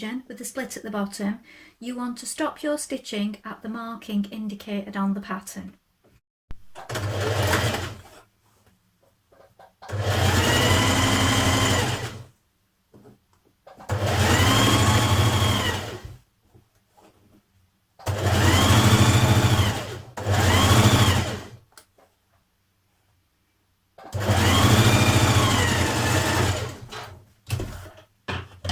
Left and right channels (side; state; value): both; identical; correlation 1.00